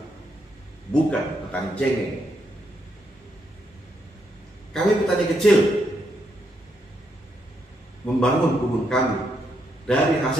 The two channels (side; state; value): both; normal; correlation 0.78